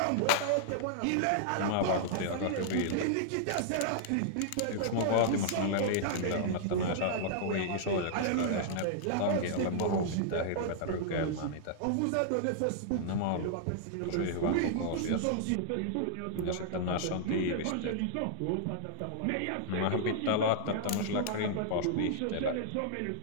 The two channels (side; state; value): both; different; correlation -0.01